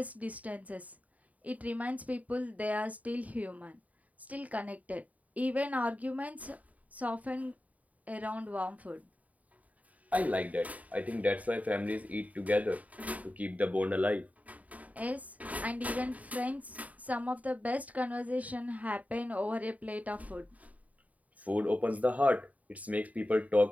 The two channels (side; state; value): left; late; 0.071 ms